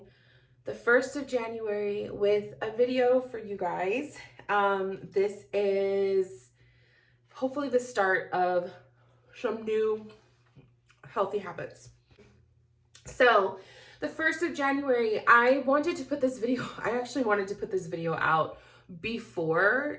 the 1st of January with a video for you guys. This is hopefully the start of some new healthy habits. So, the 1st of January, I wanted to put this video, I actually wanted to put this video out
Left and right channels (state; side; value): identical; both; correlation 1.00